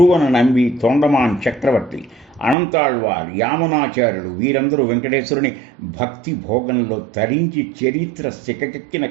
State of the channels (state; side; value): drops out; left; at 2.6 s